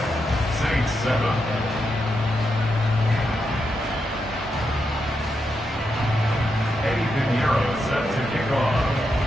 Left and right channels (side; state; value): both; normal; correlation 0.84